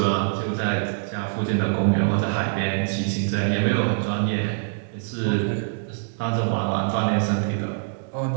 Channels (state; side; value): silent; left; digital silence